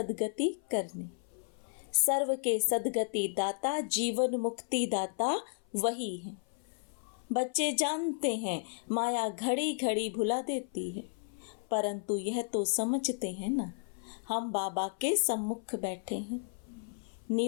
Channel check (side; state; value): right; silent; 55 dB below the other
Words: करने। सर्व के सद्गति दाता, जीवन मुक्ति दाता वही है। बच्चे जानते हैं माया घड़ी घड़ी भुला देती है, परंतु यह तो समझते हैं ना, हम बाबा के सम्मुख बैठे हैं।